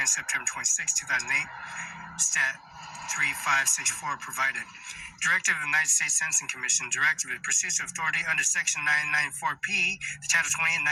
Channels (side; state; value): both; identical; correlation 1.00